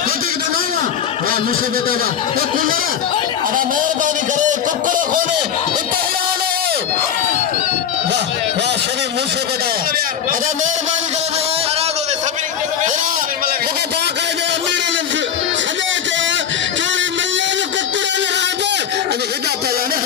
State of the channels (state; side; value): quieter; right; 8.6 dB